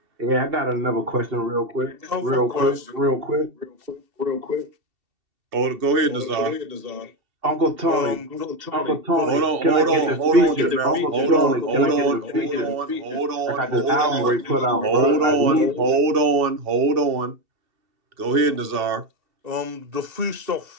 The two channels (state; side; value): late; left; 2.7 ms